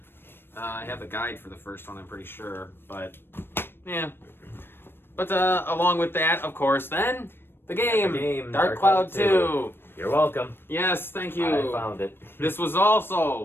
I have the guide for the first one, I'm pretty sure. But yeah. But along with that, of course, then the game, Dark Cloud 2. You're welcome. Yes, thank you. I found it. This was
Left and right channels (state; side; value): late; right; 0.10 ms